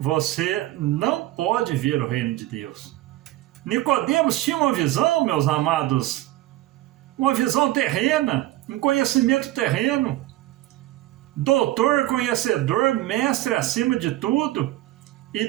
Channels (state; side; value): quieter; left; 16.0 dB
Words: não pode ver o reino de Deus. Nicodemos tinha uma visão, meus amados, uma visão terrena, um conhecimento terreno, doutor, conhecedor, mestre acima de tudo, e